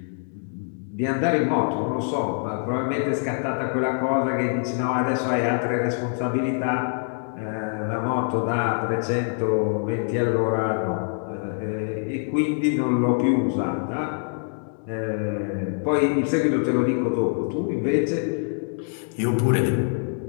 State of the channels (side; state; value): right; silent; 62 dB below the other